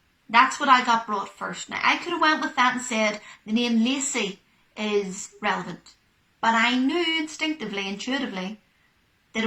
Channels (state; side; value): identical; both; correlation 1.00